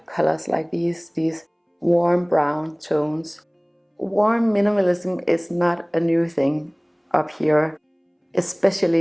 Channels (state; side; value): identical; both; correlation 1.00